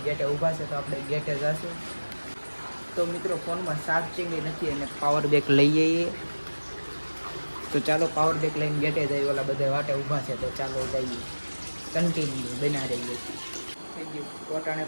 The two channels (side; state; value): both; inverted; correlation -1.00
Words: ગેટે ઊભા છે, તો આપણે ગેટે જઈશું. તો મિત્રો, ફોનમાં ચાર્જિંગ નથી અને પાવર બેક લઈ જઈએ. તો ચાલો પાવર બેક લઈને ગેટે જઈએ. ઓલા બધા વાટે ઊભા છે, તો ચાલો જઈએ. કન્ટિન્યુ બના રહીએ. થઈ ગયું પોતાને